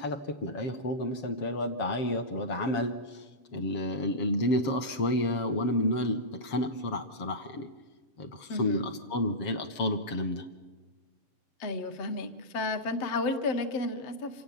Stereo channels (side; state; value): right; late; 7.4 ms